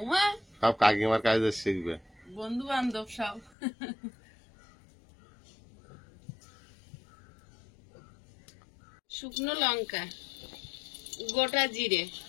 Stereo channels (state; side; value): drops out; right; at 3.5 s